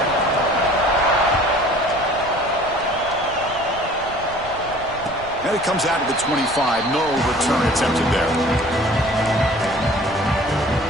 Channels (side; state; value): left; noise; rumble, 17 dB below the sound